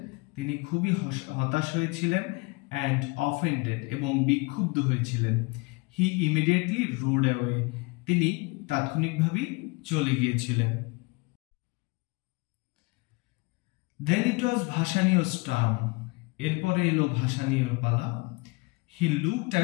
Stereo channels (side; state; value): right; quieter; 27.1 dB